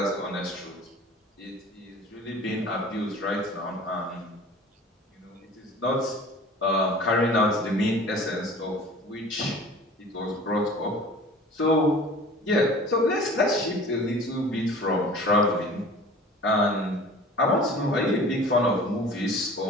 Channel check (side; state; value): both; normal; correlation 0.44